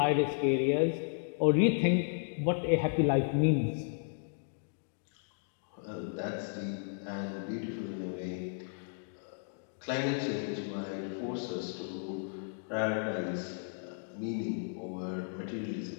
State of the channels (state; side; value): silent; right; digital silence